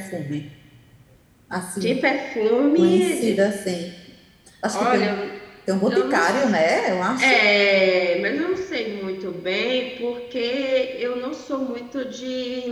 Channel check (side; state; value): both; identical; correlation 1.00